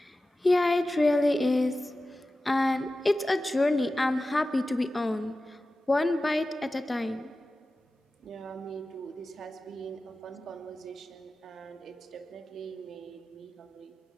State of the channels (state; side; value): normal; both; correlation 0.95